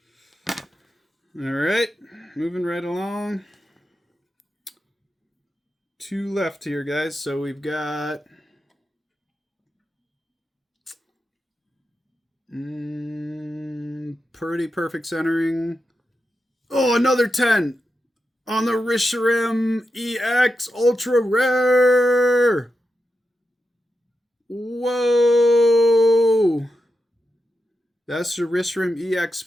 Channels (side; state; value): both; normal; correlation 0.88